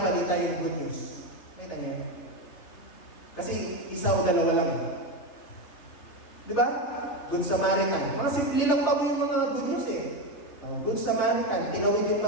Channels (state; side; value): late; right; 3.3 ms